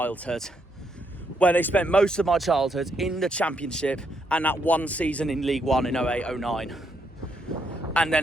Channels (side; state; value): both; normal; correlation 0.76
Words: where they spent most of my childhood in the Championship and that one season in League One in 08-09. And